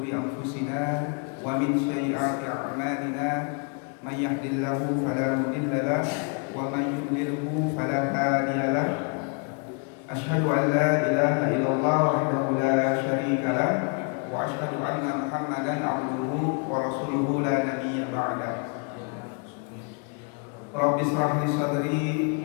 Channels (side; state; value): right; quieter; 37.5 dB